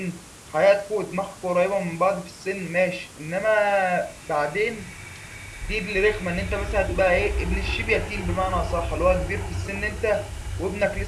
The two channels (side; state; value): both; identical; correlation 1.00